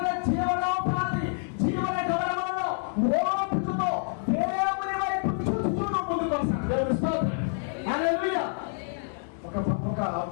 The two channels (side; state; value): right; silent; 60 dB below the other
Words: జీవనోపాధి, జీవన గౌరవంలో ఓపికతో దేవుని వైపు చూచుచు ముందుకు వస్తాను. దేవుని స్తోత్రం. హల్లెలూయా. ఒక